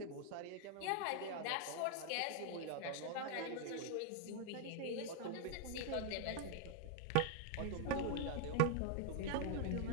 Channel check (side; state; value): both; different; correlation 0.00